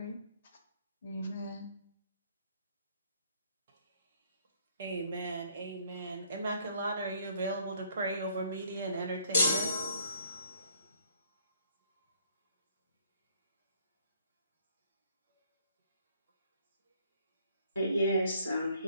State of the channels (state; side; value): inverted; both; correlation -0.63